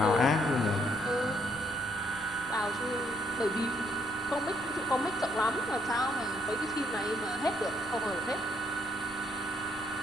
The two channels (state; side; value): noise; right; rumble, 20 dB below the sound